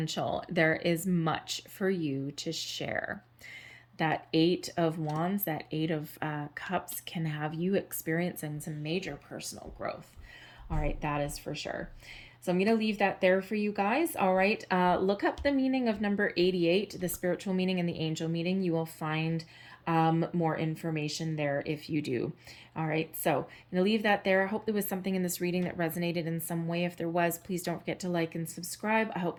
There is much for you to share. That Eight of Wands, that Eight of Cups can have you experiencing some major personal growth. All right, that is for sure. So I'm going to leave that there for you guys. All right, look up the meaning of number 88, the spiritual meaning and the angel meaning. You will find more information there if you do. All right, so I'm going to leave that there. I hope there was something in this reading that resonated in some way. If there was, please don't forget to like and subscribe. I hope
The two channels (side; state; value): both; identical; correlation 1.00